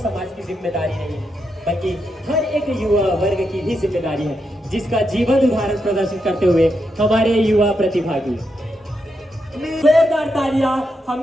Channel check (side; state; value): both; normal; correlation 0.83